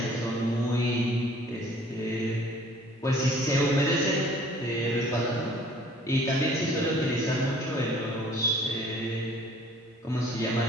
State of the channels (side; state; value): both; normal; correlation 0.54